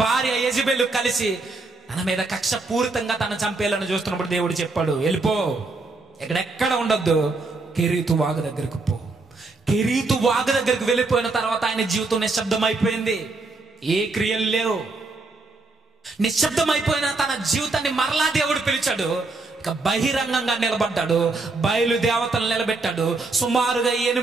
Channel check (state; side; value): quieter; left; 3.5 dB